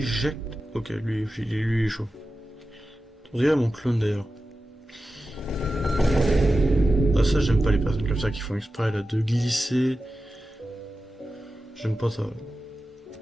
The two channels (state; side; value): normal; both; correlation 0.93